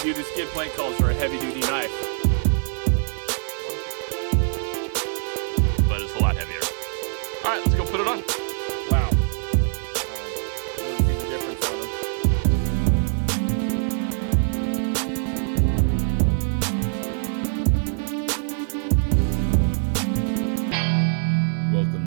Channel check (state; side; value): silent; left; 56 dB below the other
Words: duty skid plate calls for a heavy duty knife. But it's a lot heavier. Alright, let's go put it on. Wow. You can see the difference on them.